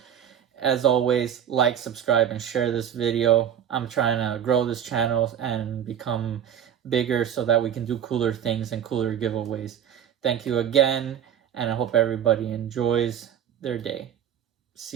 As always, like, subscribe, and share this video. I'm trying to grow this channel and become bigger so that we can do cooler things and cooler giveaways. Thank you again, and I hope everybody enjoys their day.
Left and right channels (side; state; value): left; quieter; 9.2 dB